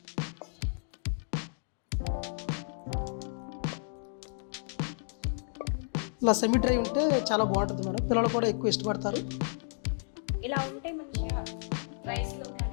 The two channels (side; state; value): right; silent; digital silence